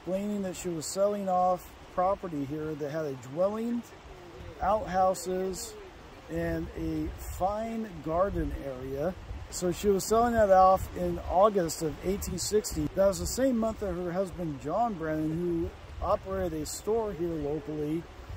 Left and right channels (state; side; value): identical; both; correlation 1.00